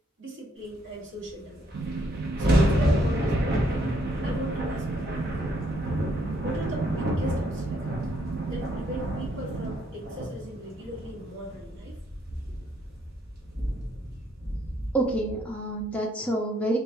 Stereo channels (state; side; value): normal; both; correlation 0.71